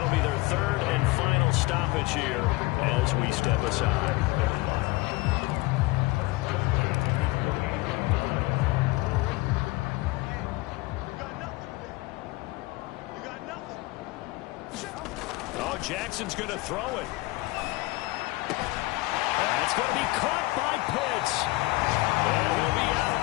be their 3rd and final stoppage here as we step aside. Oh, Jackson's going to throw it. It's going to be caught by Pitts. And he'll be out of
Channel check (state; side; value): quieter; right; 22.0 dB